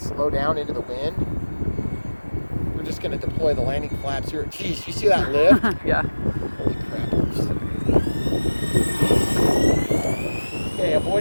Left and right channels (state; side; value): inverted; both; correlation -1.00